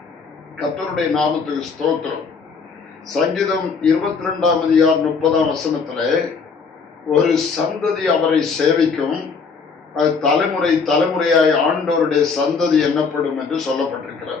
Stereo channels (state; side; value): quieter; right; 5.2 dB